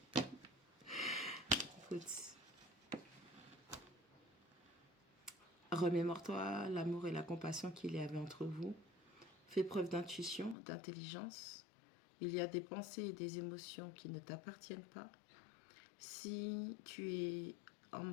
Écoute. Remémore-toi l'amour et la compassion qu'il y avait entre vous. Fais preuve d'intuition, d'intelligence. Il y a des pensées et des émotions qui ne t'appartiennent pas. Si tu es en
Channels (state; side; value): drops out; right; at 10.6 s